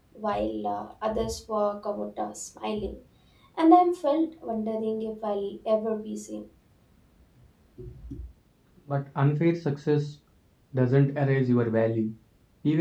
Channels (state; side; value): identical; both; correlation 1.00